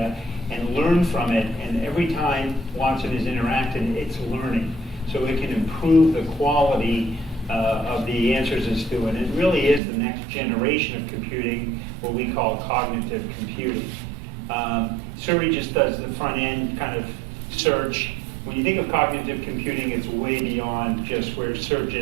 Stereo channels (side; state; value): left; drops out; at 9.8 s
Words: and learn from it. And every time Watson is interacting, it's learning. So it can improve the quality of the answers it's doing. It really is the next generation of computing, what we call cognitive computing. Suri just does the front end kind of search. When you think of cognitive computing, it's way beyond just where search